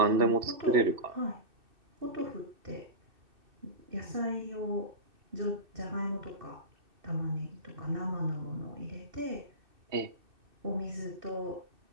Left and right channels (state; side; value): late; left; 2.6 ms